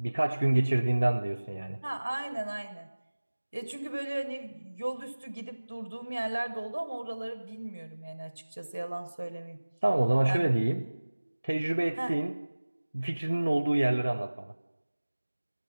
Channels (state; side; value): inverted; both; correlation -1.00